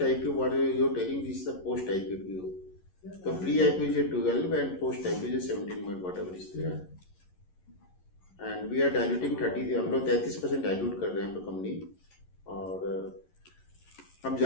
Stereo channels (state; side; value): late; right; 11 ms